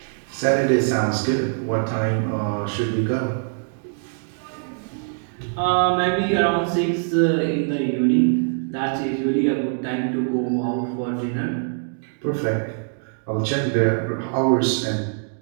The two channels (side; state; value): left; silent; digital silence